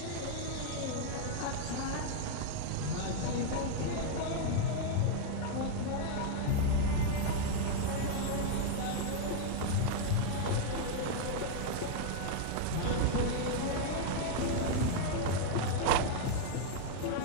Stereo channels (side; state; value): both; different; correlation 0.00